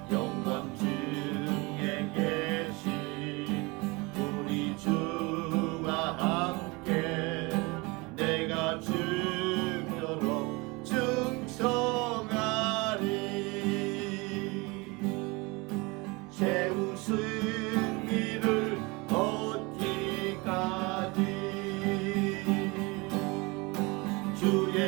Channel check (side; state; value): left; quieter; 25.9 dB